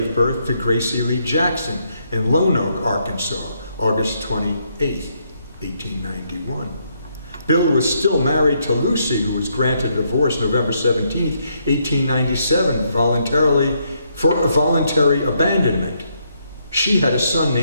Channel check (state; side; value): inverted; both; correlation -0.75